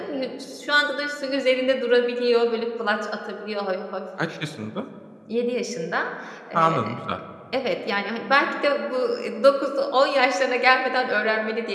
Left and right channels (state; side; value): identical; both; correlation 1.00